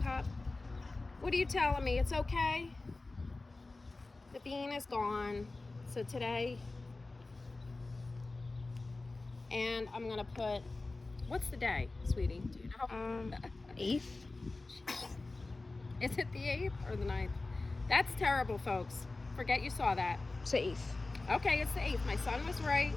What are you telling me? It's okay? The bean is gone. So today, and I'm gonna put, what's the day, sweetie? Do you know? 8th. Is it the 8th or the 9th? That's terrible, folks. Forget you saw that. It's the 8th. Okay, it's the 8th. My son was right.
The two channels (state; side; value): quieter; right; 3.3 dB